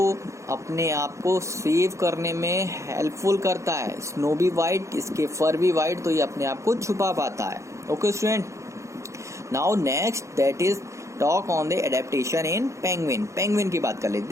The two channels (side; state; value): left; late; 0.14 ms